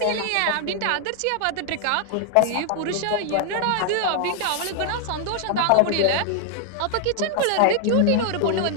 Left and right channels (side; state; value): both; different; correlation 0.00